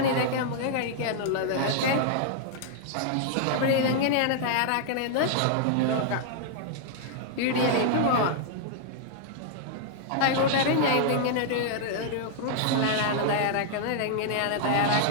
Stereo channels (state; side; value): different; both; correlation -0.01